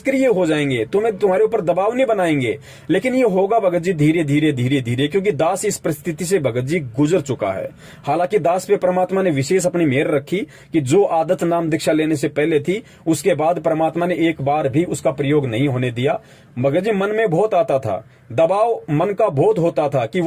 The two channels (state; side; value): identical; both; correlation 1.00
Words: हो जाएंगे, तुम्हारे ऊपर दबाव नहीं बनाएंगे। लेकिन ये होगा भगत जी धीरे धीरे धीरे धीरे, क्योंकि दास इस परिस्थिति से भगत जी गुजर चुका है। हालांकि दास पे परमात्मा ने विशेष अपनी मेहर रखी कि जो आदत नाम दीक्षा लेने से पहले थी, उसके बाद परमात्मा ने एक बार भी उसका प्रयोग नहीं होने दिया। भगत जी मन में बहुत आता था दबाव मन का बहुत होता था कि